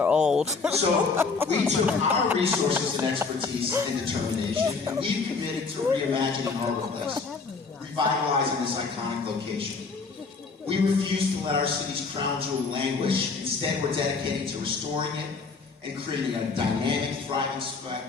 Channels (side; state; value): right; quieter; 4.6 dB